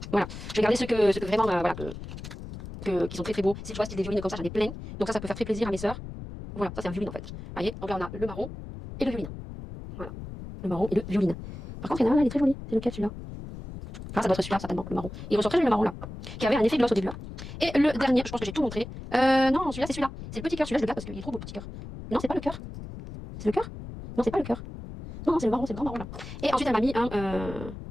Voilà. Je vais garder ceux que vraiment, voilà, qui sont très très beaux. Si tu vois, style des violines comme ça, j'en ai plein. Donc, ça peut faire très plaisir à mes soeurs. Voilà, ça c'est un violine en fait. Vous voyez, donc là on a le marron et le violine. Voilà. Le marron et le violine. Par contre, il y en a un là, il est très joli. C'est lequel celui-là? Ah, ça doit être celui-là, certainement, le marron. Il ressort très joli le marron là. Qui avait un effet gloss au début là. Et le dernier, je pense que j'ai tout montré. Non, celui-là, c'est celui-là. C'est le petit cœur. Celui-là, je le garde parce qu'il est trop beau, petit cœur. Non, c'est pas le cœur. C'est le cœur? Non, c'est pas le cœur. Non, c'est le marron, c'est le grand marron là. Et ensuite, elle m'a mis un.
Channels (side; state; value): left; noise; rumble, 11 dB below the sound